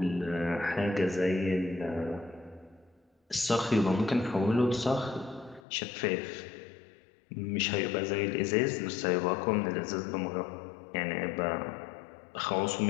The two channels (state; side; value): drops out; right; at 5.6 s